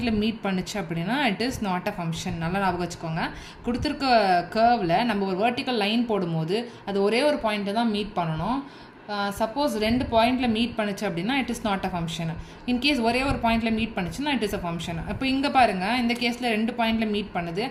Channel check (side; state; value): both; identical; correlation 1.00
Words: மீட் பண்ணுச்சு அப்படின்னா it is not a function. நல்லா ஞாபகம் வச்சுக்கோங்க. கொடுத்துருக்க கர்வில் நம்ம ஒரு வேர்ட்டிக்கல் லைன் போடும்போது அது ஒரே ஒரு பாயிண்ட்டை தான் மீட் பண்ணணும். சப்போஸ் 2 பாயிண்டில் மீட் பண்ணுச்சு அப்படின்னா it is not a function. In case ஒரே ஒரு பாயிண்டில் மீட் பண்ணுச்சுன்னா இட் இஸ் அ ஃபங்க்ஷன். இப்போ இங்கே பாருங்கள், இந்த கேஸில் 2 பாயிண்டில் மீட் பண்ணுது,